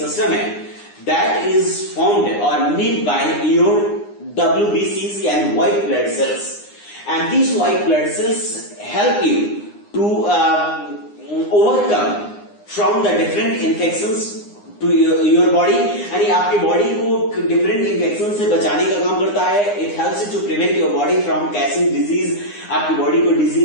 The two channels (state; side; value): late; right; 9.8 ms